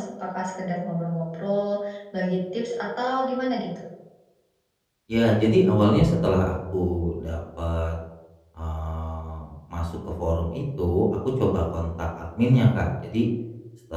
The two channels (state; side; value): identical; both; correlation 1.00